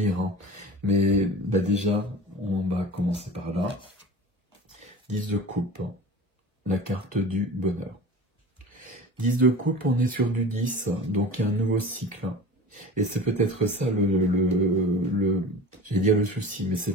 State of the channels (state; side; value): normal; both; correlation 0.36